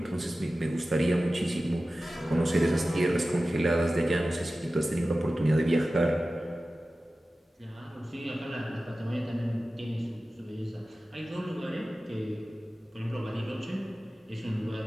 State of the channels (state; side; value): normal; both; correlation 0.95